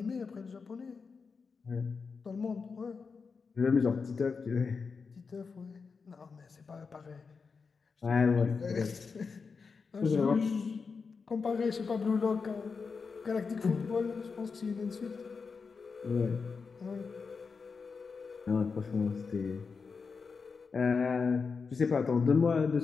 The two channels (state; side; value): quieter; right; 5.1 dB